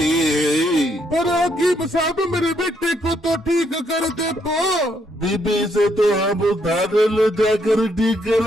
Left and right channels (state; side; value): normal; both; correlation 0.73